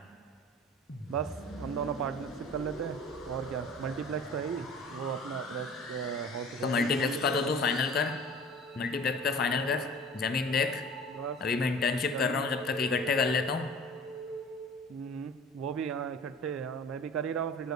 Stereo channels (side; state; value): both; normal; correlation 0.43